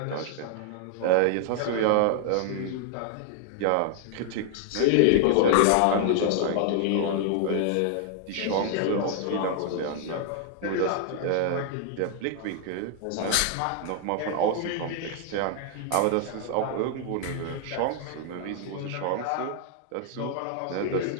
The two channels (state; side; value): different; both; correlation 0.00